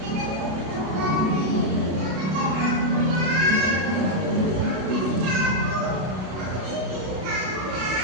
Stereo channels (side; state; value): left; late; 32 ms